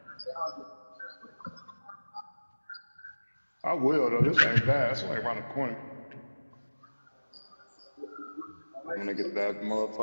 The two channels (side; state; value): both; inverted; correlation -1.00